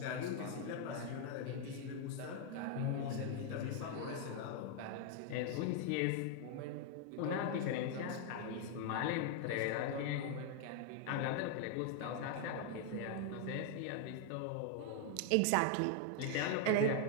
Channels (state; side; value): different; both; correlation 0.00